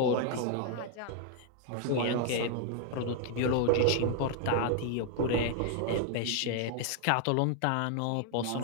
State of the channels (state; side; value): different; both; correlation 0.00